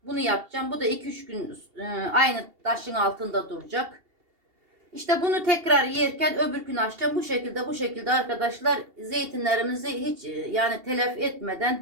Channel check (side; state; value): left; late; 2.8 ms